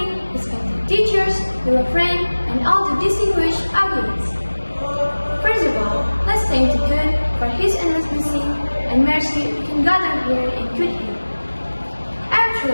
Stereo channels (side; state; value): both; inverted; correlation -1.00